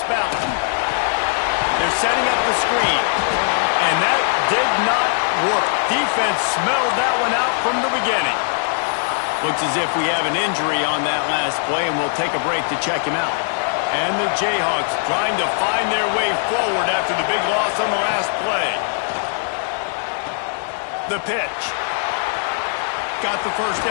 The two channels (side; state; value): right; silent; digital silence